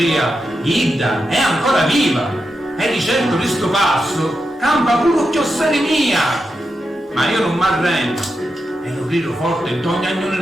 Idda è ancora viva, e di certo di sto passo campa pure chiossere mia. Ma io non m'arrendo, e lo grido forte in ogni agnone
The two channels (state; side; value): normal; both; correlation 0.88